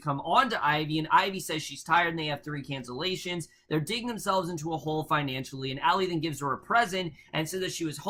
on to Ivy, and Ivy says she's tired and they have 3 cancellations. They're digging themselves into a hole financially, and Allie then gives her a present and says that she was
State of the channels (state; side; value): identical; both; correlation 1.00